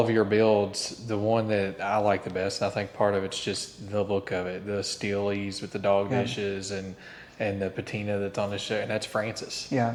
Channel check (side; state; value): both; identical; correlation 1.00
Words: your builds, the one that I like the best, and I think part of it's just the look of it, the Steelies with the dog dishes and the patina that's on the show, and that's Francis. Yeah.